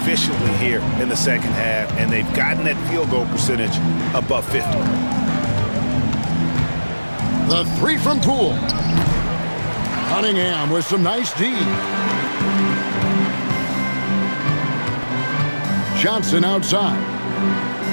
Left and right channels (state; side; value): inverted; both; correlation -1.00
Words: here in the second half, and they've gotten that field goal percentage above 50. The three from Poole. Cunningham with some nice D. Johnson outside.